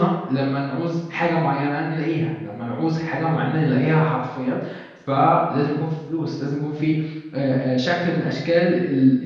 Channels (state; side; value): identical; both; correlation 1.00